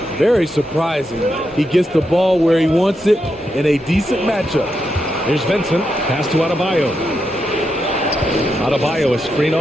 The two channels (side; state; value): both; normal; correlation 0.84